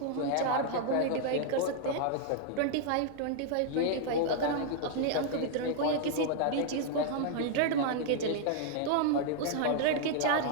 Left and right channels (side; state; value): both; different; correlation 0.00